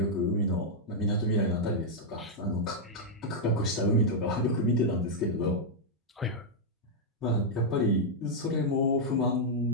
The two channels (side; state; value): both; normal; correlation -0.04